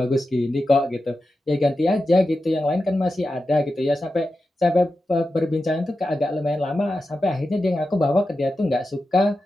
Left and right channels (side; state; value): both; normal; correlation 0.91